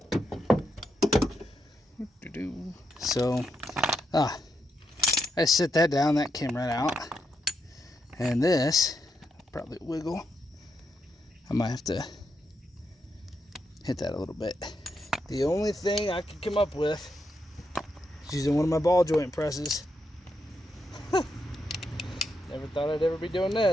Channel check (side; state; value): both; normal; correlation 0.82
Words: So, I set that down, that came right out. And this, probably wiggle. I might have to hit that a little bit. The only thing I could come up with is using one of my ball joint presses. Never thought I'd ever be doing